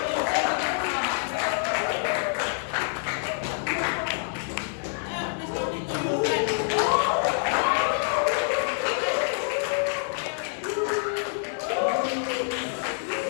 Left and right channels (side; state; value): right; silent; 60 dB below the other